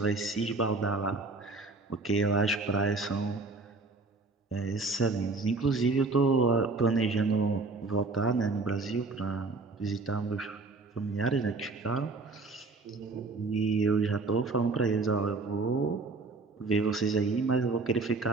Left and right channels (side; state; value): left; quieter; 3.7 dB